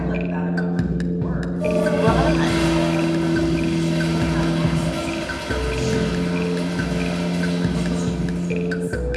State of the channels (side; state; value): both; identical; correlation 1.00